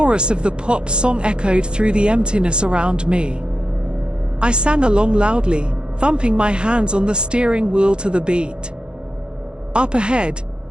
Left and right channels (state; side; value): late; left; 0.050 ms